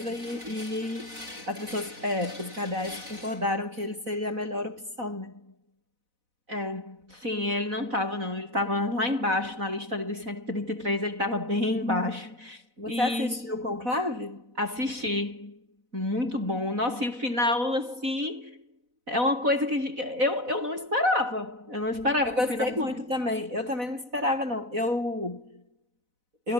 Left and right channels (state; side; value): late; left; 4.0 ms